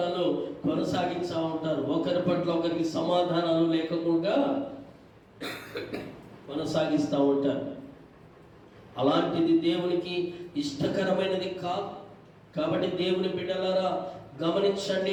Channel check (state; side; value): identical; both; correlation 1.00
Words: కొనసాగిస్తూ ఉంటారు. ఒకరి పట్ల ఒకరికి సమాధానాలు లేకుండా కొనసాగిస్తూ ఉంటారు. అలాంటిది దేవునికి ఇష్టకరమైనది కాదు. కాబట్టి దేవుని బిడ్డలారా